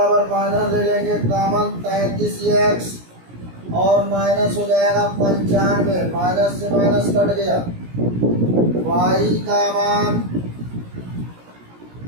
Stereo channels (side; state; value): left; late; 17 ms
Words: माइनस ले लेंगे कॉमन 33x और माइनस हो जाएगा 95, माइनस से माइनस कट गया। y का मान